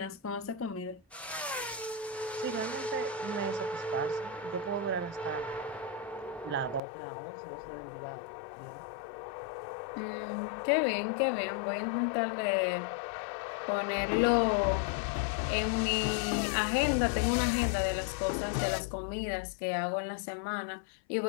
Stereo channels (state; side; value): drops out; right; at 6.8 s